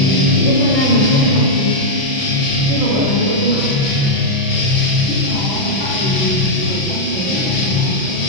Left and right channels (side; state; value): right; late; 6.0 ms